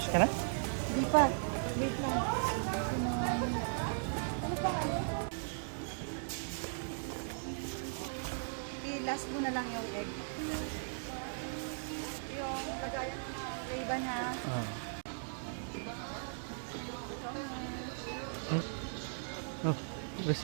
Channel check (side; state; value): left; silent; digital silence